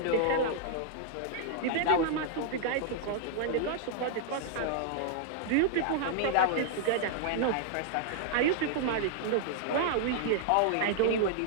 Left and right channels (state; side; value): different; both; correlation -0.01